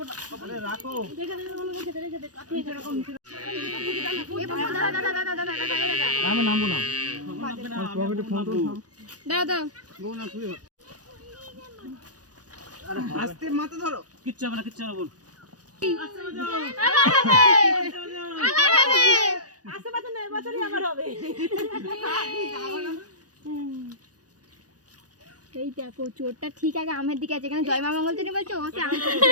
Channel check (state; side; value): late; left; 0.68 ms